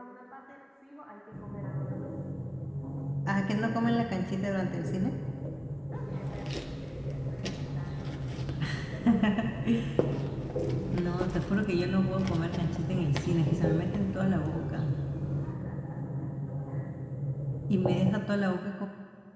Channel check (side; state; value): both; identical; correlation 1.00